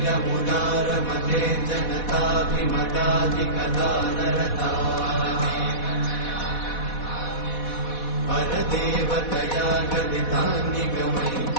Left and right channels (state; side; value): late; right; 4.1 ms